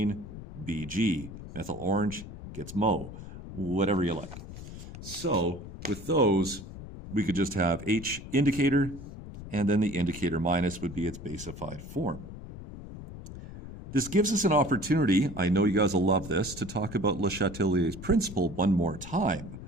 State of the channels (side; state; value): left; noise; rumble, 12 dB below the sound